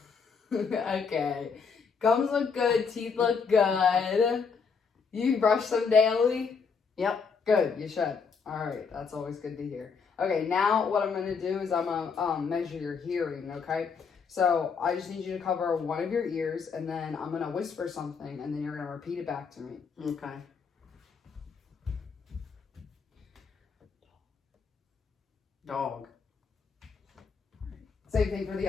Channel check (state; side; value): quieter; right; 5.5 dB